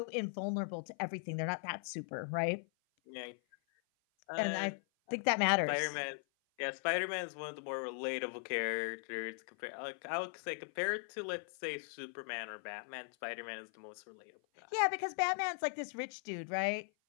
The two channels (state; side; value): silent; right; 52 dB below the other